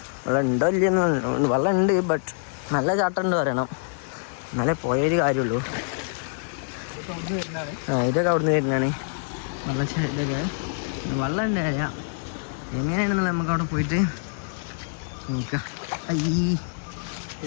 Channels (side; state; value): right; silent; digital silence